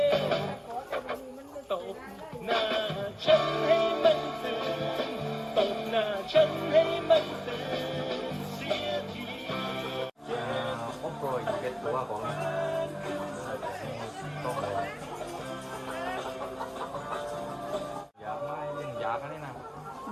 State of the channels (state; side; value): identical; both; correlation 1.00